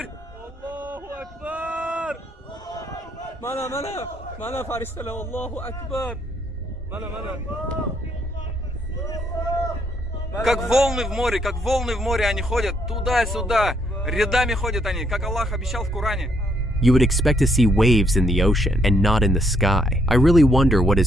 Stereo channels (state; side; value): normal; both; correlation 0.72